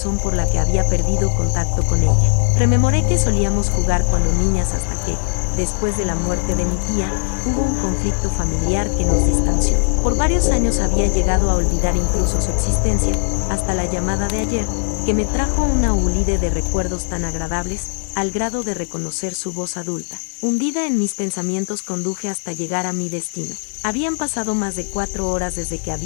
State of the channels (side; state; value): right; silent; 67 dB below the other